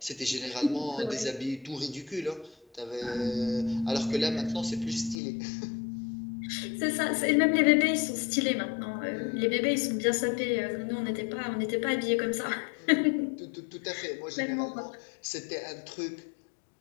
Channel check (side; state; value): right; drops out; at 5.2 s